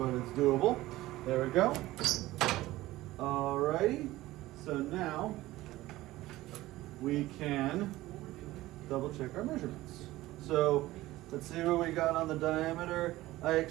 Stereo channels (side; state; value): left; quieter; 17.2 dB